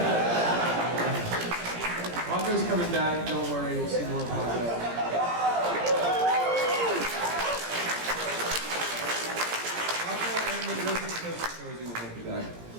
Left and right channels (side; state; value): left; late; 17 ms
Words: Paco's coming back. Don't worry. We'll see more of Paco.